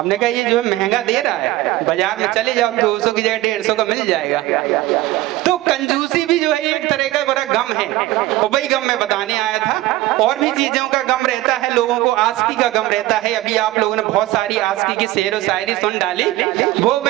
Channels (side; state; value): left; quieter; 17.3 dB